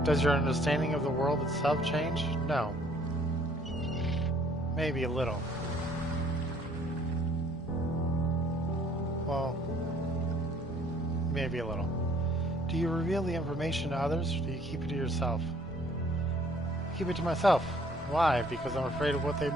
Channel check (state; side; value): normal; both; correlation 0.60